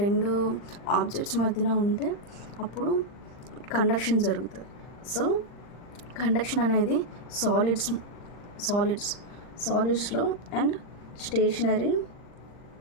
రెండు ఆబ్జెక్ట్స్ మధ్యన ఉంటే అప్పుడు కండక్షన్ జరుగుతుంది. సో కండక్షన్ అనేది సాలిడ్స్లో అండ్ స్టేషనరీ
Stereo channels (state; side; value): late; right; 39 ms